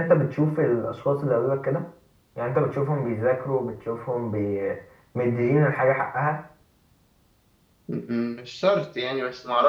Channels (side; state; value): both; identical; correlation 1.00